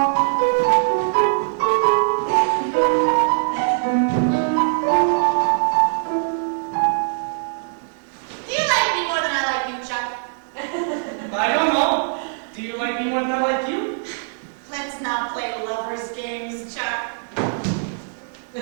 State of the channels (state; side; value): silent; left; digital silence